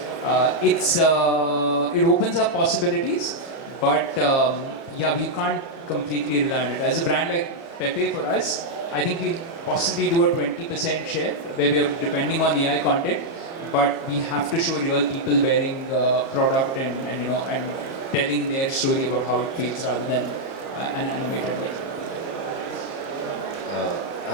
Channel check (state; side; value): late; right; 30 ms